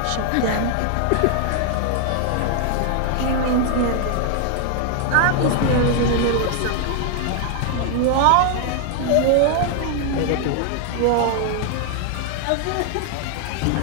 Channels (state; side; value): different; both; correlation 0.00